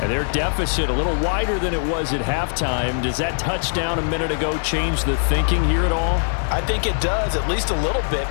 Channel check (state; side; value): silent; right; digital silence